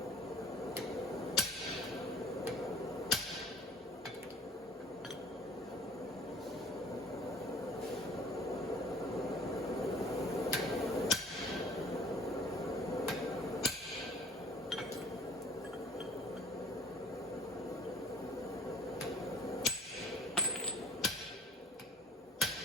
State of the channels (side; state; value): both; normal; correlation 0.48